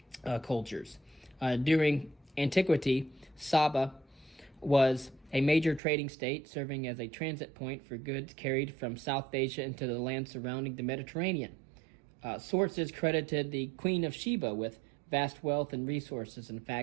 cultures. During antiquity, Saba was a major trading state, serving as a transit point for goods carried from South Asia into the land surrounding the Mediterranean. Sources credited the Queen of Sheba with vast wealth and resources. In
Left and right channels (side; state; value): left; drops out; at 5.8 s